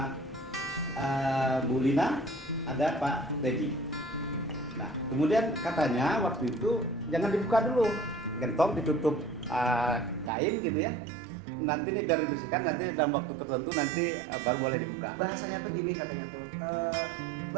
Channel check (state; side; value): drops out; left; at 10.3 s